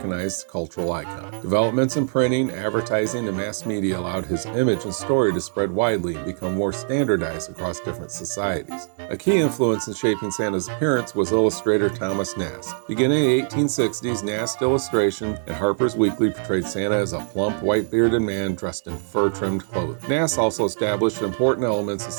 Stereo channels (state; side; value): silent; left; digital silence